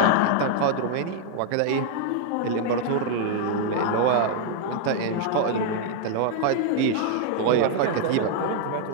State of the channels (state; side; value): different; both; correlation 0.00